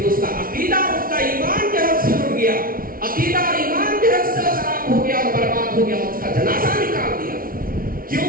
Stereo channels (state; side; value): late; left; 0.42 ms